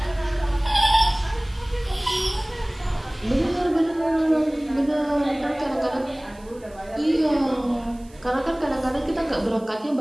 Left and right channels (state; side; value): noise; right; hiss, 27 dB below the sound